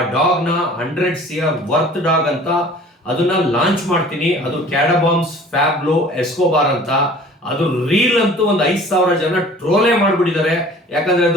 ಡಾಗ್ ನ 100 CR ವರ್ತ್ ಡಾಗ್ ಅಂತ ಅದನ್ನ ಲಾಂಚ್ ಮಾಡ್ತೀನಿ. ಅದು ಕ್ಯಾಡಬಾಮ್ಸ್ ಫ್ಯಾಬ್ಲೋ ಎಸ್ಕೋಬಾರ್ ಅಂತ. ಅದು ರೀಲ್ ಅಂತೂ ಒಂದು 5,000 ಜನ ಟ್ರೋಲೇ ಮಾಡ್ಬಿಟ್ಟಿದ್ದಾರೆ. ಯಾಕಂದ್ರೆ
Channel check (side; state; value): both; normal; correlation 0.47